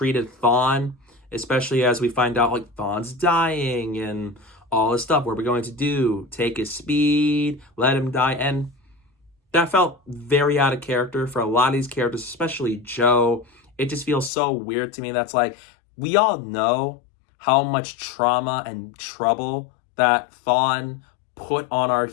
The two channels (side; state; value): right; drops out; at 14.3 s